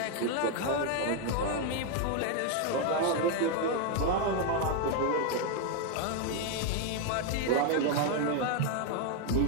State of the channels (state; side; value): different; both; correlation 0.01